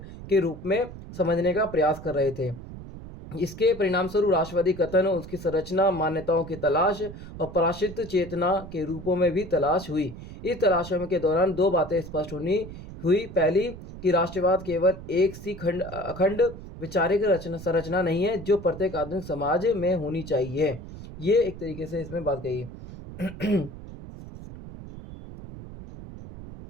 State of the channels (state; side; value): noise; right; rumble, 13 dB below the sound